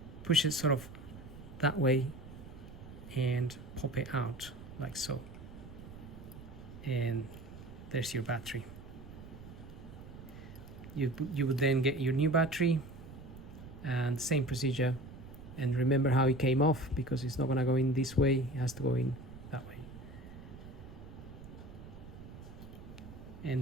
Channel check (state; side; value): noise; right; rumble, 15 dB below the sound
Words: push it sort of that way and pop it out like so, and there's your battery. You would then get your new battery and same procedure, and remember how it came off, because it's not going to go in this way, it has to go in that way,